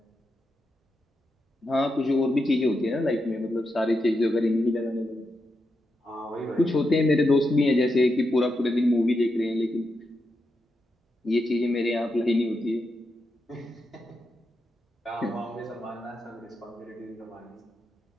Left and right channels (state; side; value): normal; both; correlation 0.86